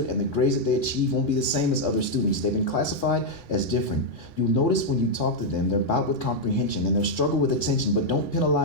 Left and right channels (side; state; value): right; late; 3.6 ms